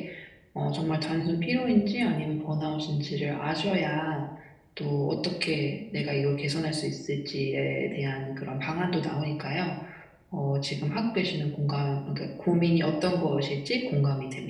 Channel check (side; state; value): both; identical; correlation 1.00